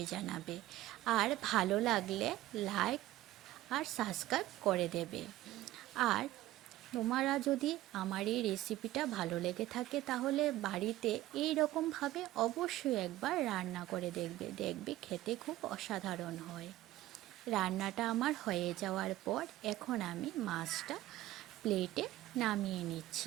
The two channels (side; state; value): left; quieter; 15.6 dB